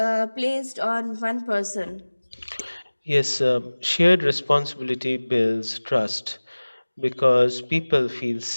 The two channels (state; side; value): inverted; both; correlation -1.00